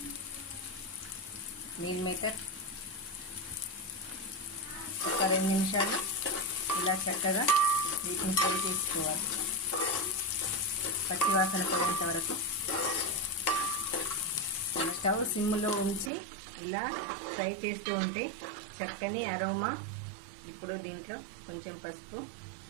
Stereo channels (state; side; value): drops out; left; at 16.1 s